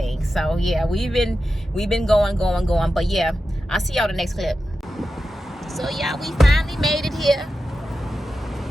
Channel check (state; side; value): normal; both; correlation 0.91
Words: So yeah, we've been going. But yeah, I'll see y'all the next clip. So yeah, we finally made it here.